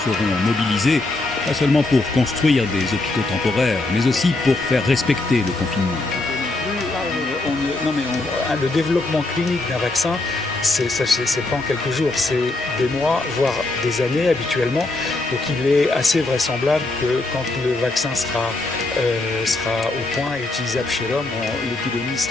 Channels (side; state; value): right; quieter; 3.0 dB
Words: seront mobilisés, pas seulement pour construire des hôpitaux temporaires, mais aussi pour faire respecter le confinement. Le développement clinique d'un vaccin, c'est pas en quelques jours, c'est des mois, voire des années habituellement. Donc il est assez vraisemblable que quand le vaccin sera au point et utilisable chez l'homme, l'épidémie